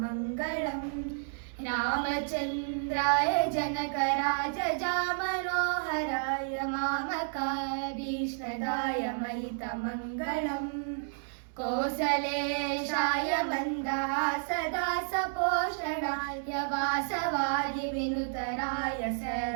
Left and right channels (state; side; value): silent; left; 57 dB below the other